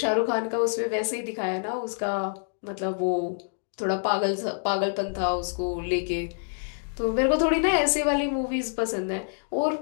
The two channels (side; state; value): right; silent; digital silence